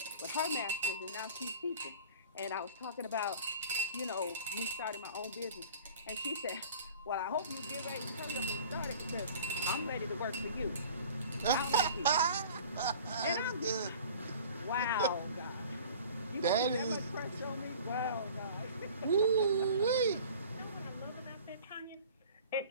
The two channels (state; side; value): inverted; both; correlation -0.44